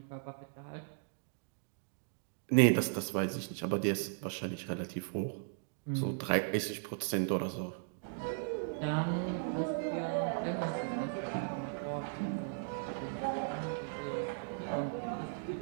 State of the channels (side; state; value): left; silent; digital silence